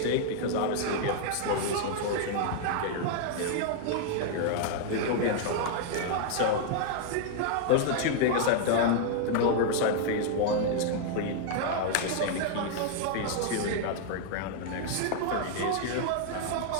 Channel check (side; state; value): both; different; correlation 0.00